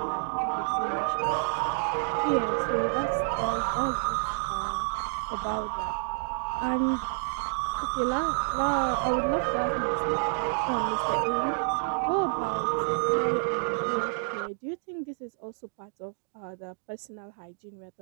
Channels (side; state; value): left; silent; digital silence